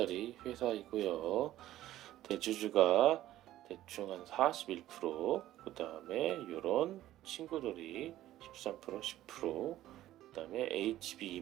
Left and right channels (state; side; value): quieter; left; 14.1 dB